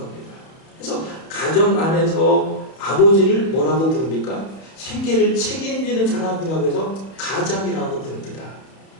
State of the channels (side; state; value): right; late; 31 ms